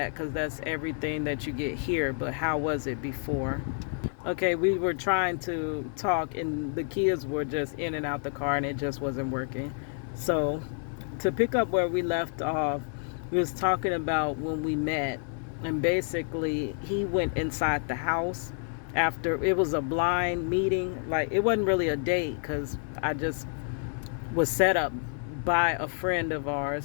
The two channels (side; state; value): right; silent; 59 dB below the other